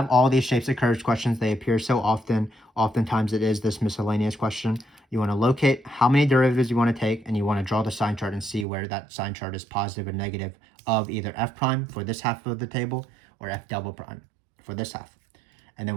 all these shapes of curves questions. They appear so often. Oftentimes it is this miscellaneous question. You want to locate how many derivatives you want to take, and you want to draw the sign chart and see where that sign chart is positive or negative of either f prime for this half of the table or f double prime for this half. And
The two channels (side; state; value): left; drops out; at 8.7 s